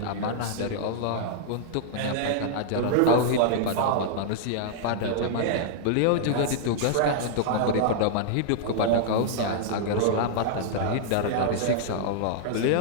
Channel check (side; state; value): both; different; correlation -0.01